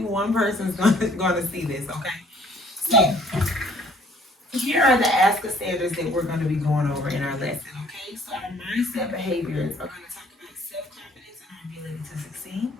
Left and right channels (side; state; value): both; normal; correlation 0.58